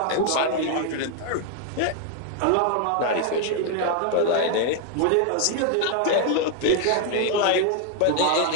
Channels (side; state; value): both; different; correlation 0.00